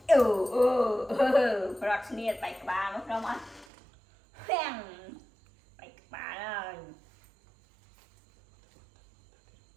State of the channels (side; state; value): left; drops out; at 3.7 s